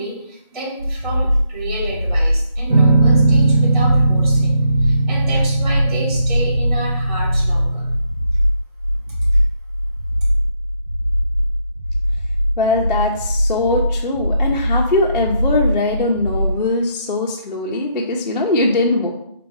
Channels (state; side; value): inverted; both; correlation -0.74